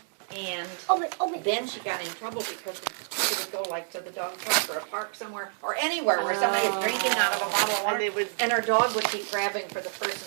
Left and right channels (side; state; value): left; silent; digital silence